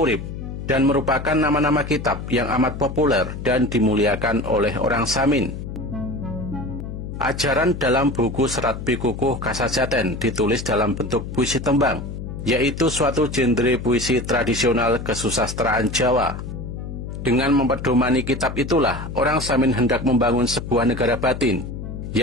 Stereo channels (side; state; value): left; noise; hum, 8 dB below the sound